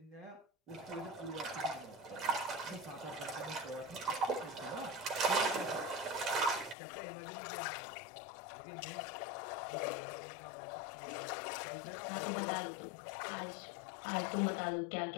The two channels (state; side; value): drops out; right; at 6.8 s